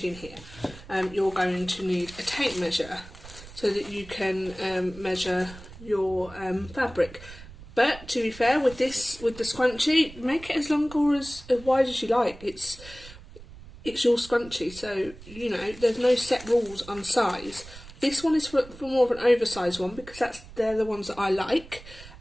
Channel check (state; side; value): noise; right; rumble, 17 dB below the sound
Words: here. You're going to need a tape measure so that you can measure your fabric. But to be fair, with the scrunchie, make it as long or as wide as you like. It's your scrunchie, so you know there's no set rules on size. This one is for more of an oversized one because they're the ones that I like.